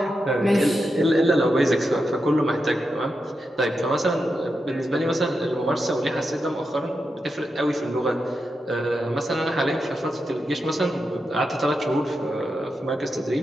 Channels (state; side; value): normal; both; correlation 0.87